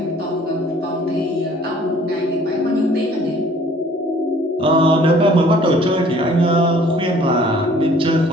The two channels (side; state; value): both; normal; correlation 0.55